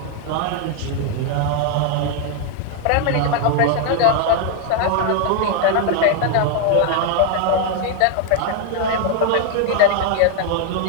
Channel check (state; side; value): different; both; correlation 0.00